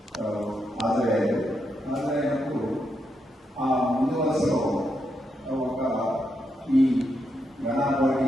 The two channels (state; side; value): normal; both; correlation 0.82